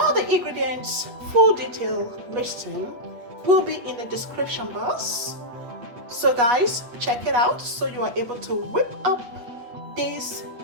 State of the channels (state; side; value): late; left; 8.5 ms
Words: the ingredients, full detail listing will be in the description box. So guys, check it out so you are able to whip up this